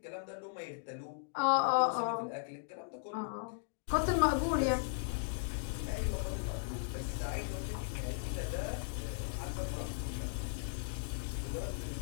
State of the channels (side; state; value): right; silent; digital silence